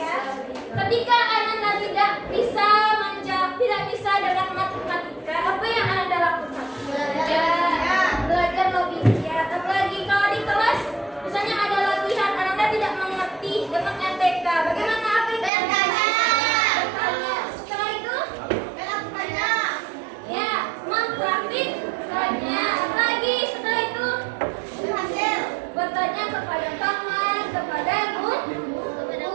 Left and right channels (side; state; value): left; drops out; at 15.5 s